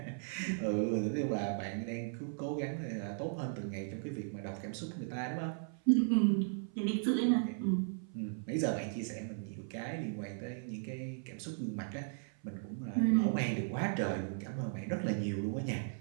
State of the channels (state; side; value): silent; left; 53 dB below the other